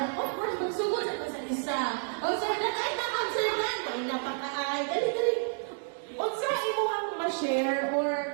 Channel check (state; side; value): silent; left; 58 dB below the other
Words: Of course, magsugod sa ito sa isa. O sa ay na-concern ay napaka-ay. Dali. O sa imo kang ma-share or